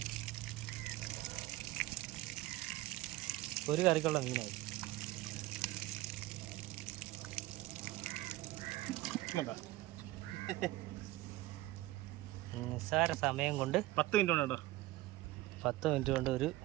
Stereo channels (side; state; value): left; quieter; 17.7 dB